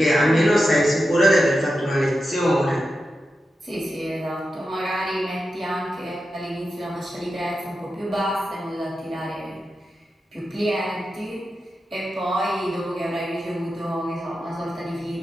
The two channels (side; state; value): both; normal; correlation 0.90